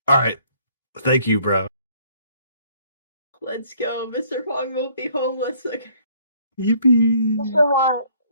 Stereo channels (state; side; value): inverted; both; correlation -0.62